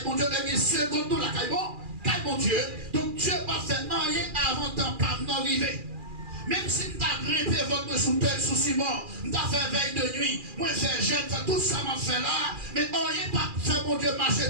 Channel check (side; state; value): left; late; 2.4 ms